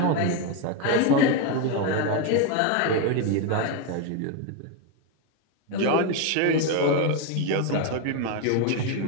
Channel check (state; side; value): different; both; correlation 0.02